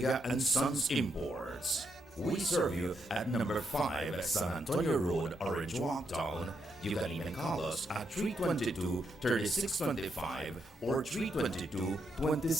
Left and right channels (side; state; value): both; normal; correlation 0.80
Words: and Sons Imports. We serve you at number 5 San Antonio Road, Orange Walk Town. You can even call us at 322-3625 or